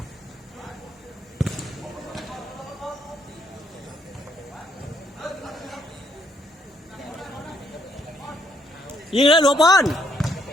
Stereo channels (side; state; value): both; normal; correlation 0.71